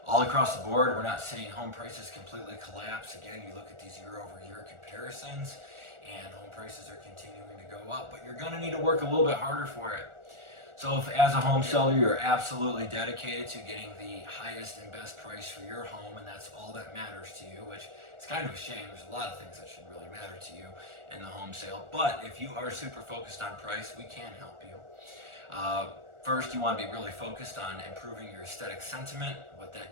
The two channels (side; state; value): left; late; 1.4 ms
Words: All across the board, we're not seeing home prices completely collapse. Again, you look at these year-over-year comparisons, and home prices are continuing to go up, but you're going to need to work a little bit harder for it. So if as a home seller, you're absolutely dedicated to getting the highest and best price for your home, and that's all that matters to you, which is kind of a shame. There's a lot of things that should really matter to you in the home sale. But if you are super focused on price, we can help you. First, you want to be really focused on improving your aesthetic sentiment. What